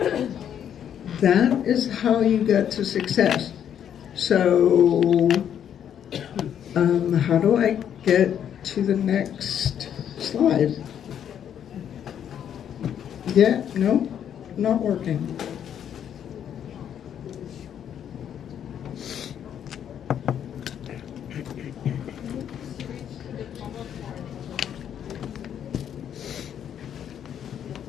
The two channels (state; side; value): quieter; right; 9.3 dB